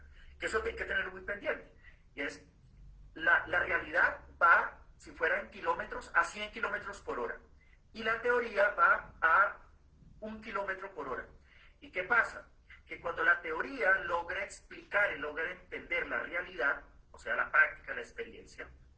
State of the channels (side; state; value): both; identical; correlation 1.00